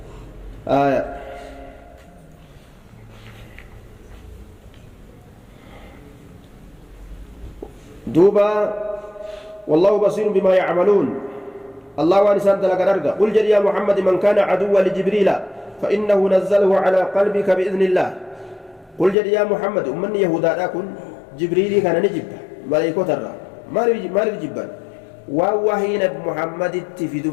آية دوبا والله بصير بما يعملون الله وانسان دلق الأرقى قل جل يا محمد من كان عدوا لجبريل فإنه نزله على قلبك بإذن الله قل جل يا محمد أمن يهودا لكن جبريل كان نجب ملائكة ترى ما جبان ووهين محمد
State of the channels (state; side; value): drops out; right; at 19.2 s